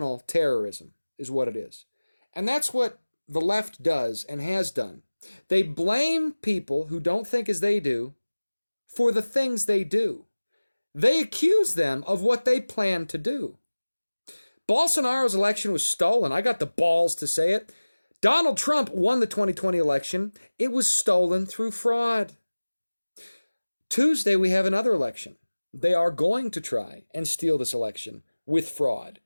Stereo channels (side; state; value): both; inverted; correlation -1.00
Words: terrorism, is what it is. And that's what the left does and has done. They blame people who don't think as they do for the things they do. They accuse them of what they plan to do. Bolsonaro's election was stolen. I got the balls to say it. Donald Trump won the 2020 election. It was stolen through fraud. Tuesday, we have another election. They are going to try and steal this election with fraud.